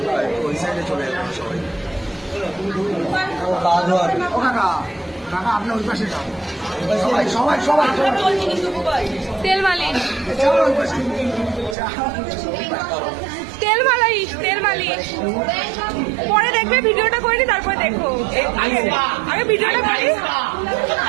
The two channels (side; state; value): left; drops out; at 11.8 s